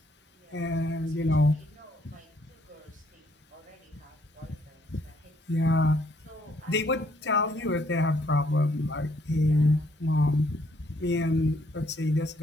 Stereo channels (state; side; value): normal; both; correlation 0.68